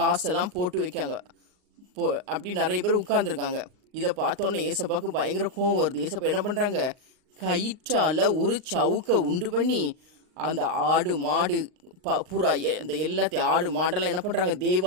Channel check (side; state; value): left; late; 39 ms